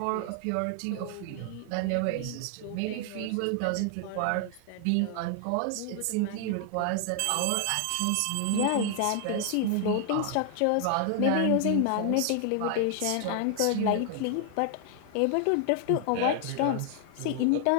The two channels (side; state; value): both; different; correlation 0.00